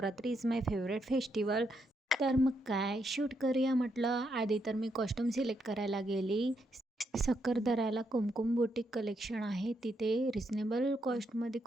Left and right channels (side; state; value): both; normal; correlation 0.79